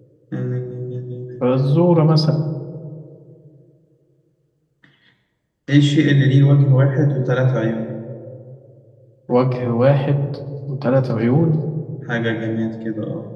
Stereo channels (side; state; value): both; identical; correlation 1.00